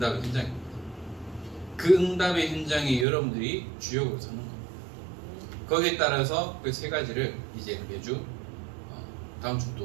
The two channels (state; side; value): drops out; left; at 3.1 s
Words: 현장입니다. 그 응답의 현장에 여러분들이 주역으로 서는 겁니다. 거기에 따라서 그 세 가지를 이제 매주 다음